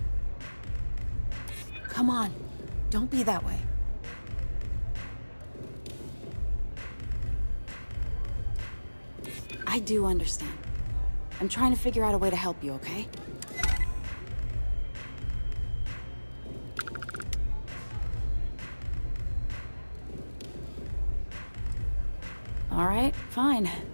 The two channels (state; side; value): inverted; both; correlation -1.00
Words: Come on, don't be that way. I do understand. I'm trying to figure out a way to help you, okay? All right, fine.